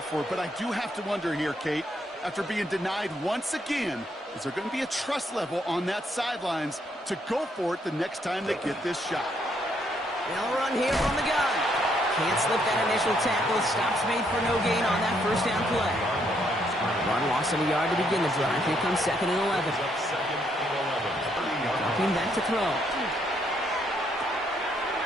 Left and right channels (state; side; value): normal; both; correlation 0.73